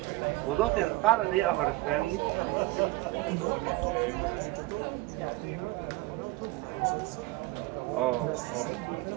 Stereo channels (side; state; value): left; quieter; 20.2 dB